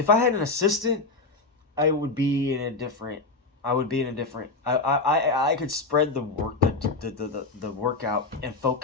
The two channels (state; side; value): quieter; right; 3.6 dB